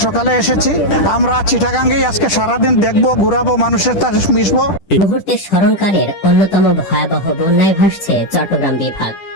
সকালে এসেছি। আমরা চিটাগাঙ্গেই আজকে সারাদিন দেখবো, ঘুরাবো, মানুষের সাথে মিশবো। মুহূর্তে স্মরণকালের অন্যতম ভয়াবহ বন্যায় ভাসছে চট্টগ্রাম বিভাগ।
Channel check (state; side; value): late; right; 10 ms